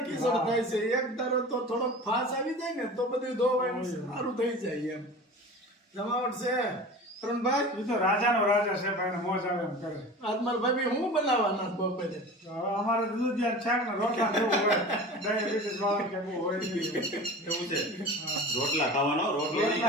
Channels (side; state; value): both; normal; correlation 0.36